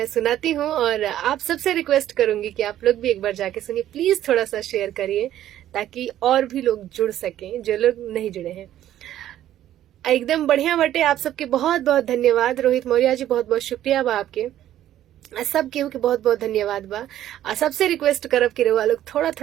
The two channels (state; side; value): quieter; left; 12.3 dB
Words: सुनाती हूँ। और आप सबसे रिक्वेस्ट करूंगी कि आप लोग भी एक बार जाके सुनिए। प्लीज थोड़ा सा शेयर करिए ताकि और भी लोग जुड़ सकें जो लोग नहीं जुड़े हैं। एकदम बढ़िया बटे। आप सबके बहुत बहुत धन्यवाद। रोहित मौर्य जी, बहुत बहुत शुक्रिया बा आपके। सब केहू के बहुत बहुत धन्यवाद बा। सबसे रिक्वेस्ट करब कि रउआ लोग थोड़ा